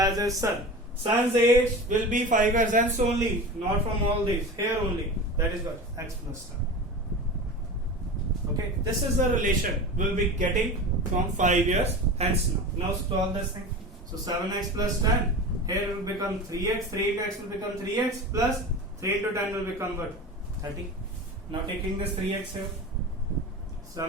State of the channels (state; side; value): normal; both; correlation 0.31